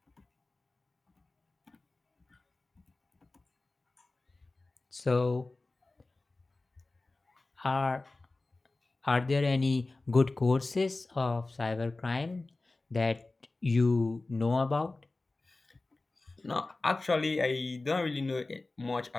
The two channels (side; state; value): right; quieter; 3.2 dB